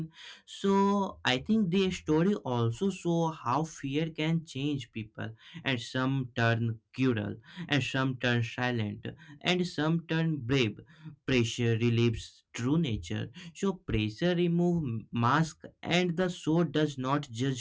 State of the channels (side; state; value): both; identical; correlation 1.00